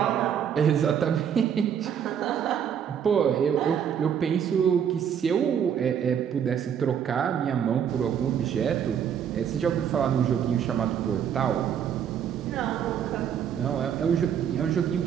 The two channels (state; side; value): quieter; left; 8.5 dB